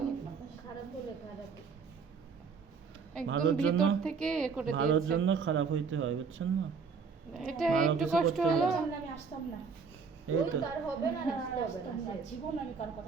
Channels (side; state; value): left; quieter; 5.5 dB